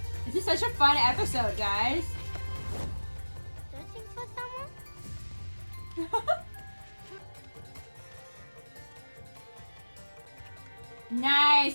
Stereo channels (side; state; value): both; inverted; correlation -1.00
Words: This is such a fun episode, guys. Searching for someone? Nice.